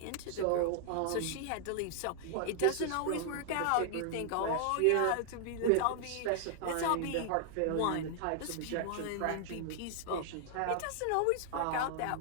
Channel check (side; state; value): both; different; correlation 0.00